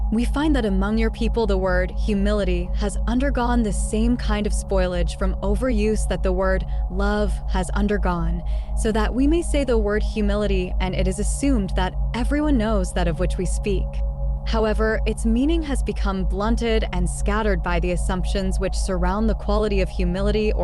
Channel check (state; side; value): identical; both; correlation 1.00